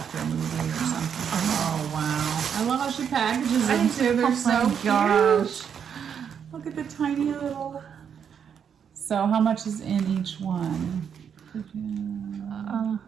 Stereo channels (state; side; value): quieter; left; 7.7 dB